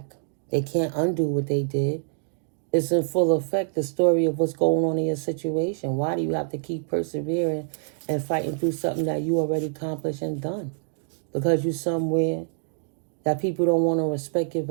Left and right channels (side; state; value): left; silent; digital silence